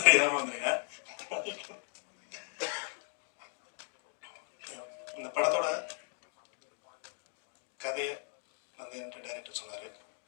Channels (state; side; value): silent; right; 53 dB below the other